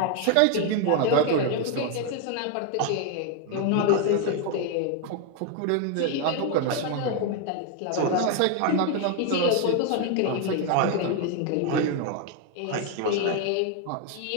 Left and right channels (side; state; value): both; different; correlation 0.01